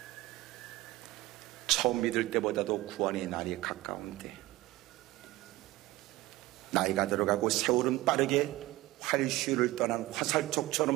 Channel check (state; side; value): quieter; left; 18.5 dB